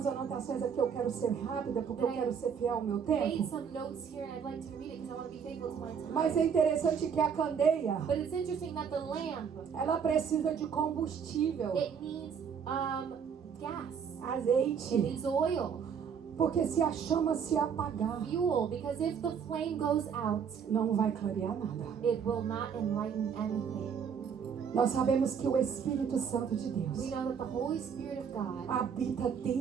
anotações aqui. Eu quero ser rápida porque eu quero ser fiel ao meu I made tempo. some notes here and I'd like to read it because I want to be faithful to my time. Mas é interessante que a candeia, But it's interesting that the lamp, ela precisa de combustível, it needs gas. It azeite. needs oil, Porque se a chama se apagar, fuel, because if the flame goes out, não vai clarear nada. it will not enlighten anything. Nós sabemos que o Espírito Santo de We Deus know that the Holy Spirit of God habita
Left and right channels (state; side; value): quieter; left; 7.0 dB